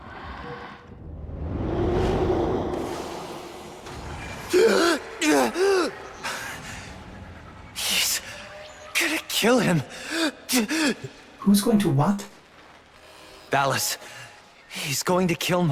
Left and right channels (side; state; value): both; identical; correlation 1.00